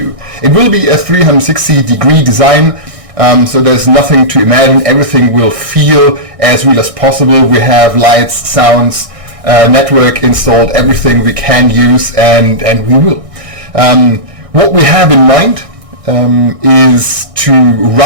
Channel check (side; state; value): left; late; 1.6 ms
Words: It will be a 360-degree design, so there's nothing to imagine. Everything will feel as real as possible. We have lights, sounds, network installed, everything we can use, and we will. What we have in mind is to